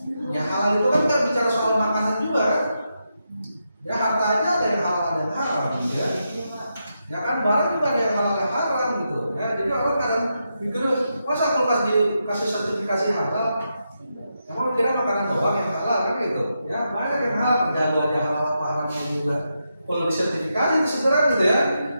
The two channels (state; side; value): inverted; both; correlation -0.85